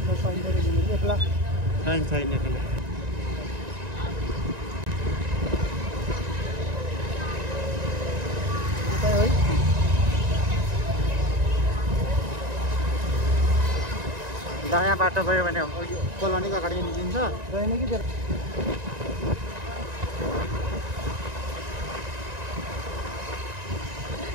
दायाँ बाटो गयो भने कोलोनीको अगाडि निस्किन्छ रहेन कि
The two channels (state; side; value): late; left; 1.9 ms